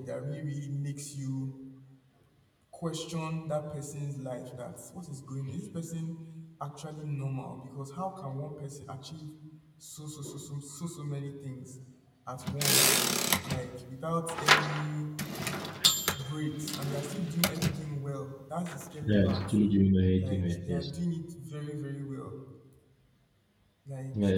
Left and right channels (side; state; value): both; identical; correlation 1.00